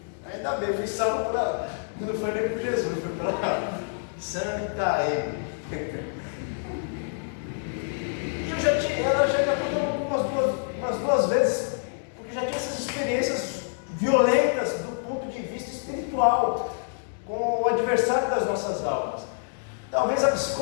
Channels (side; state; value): right; silent; digital silence